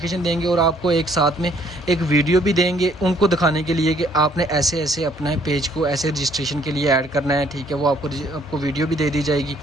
देंगे और आपको एक साथ में एक वीडियो भी देंगे उनको दिखाने के लिए कि आपने ऐसे ऐसे अपना पेज को ऐसे रजिस्ट्रेशन के लिए ऐड करना है, ठीक है। वो आपको वीडियो भी दे दी जाएगी,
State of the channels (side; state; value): both; normal; correlation 0.64